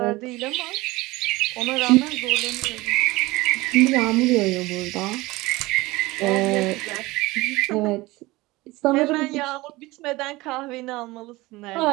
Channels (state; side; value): quieter; left; 20.7 dB